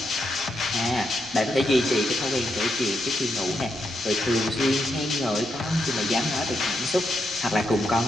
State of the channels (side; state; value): right; noise; rumble, 22 dB below the sound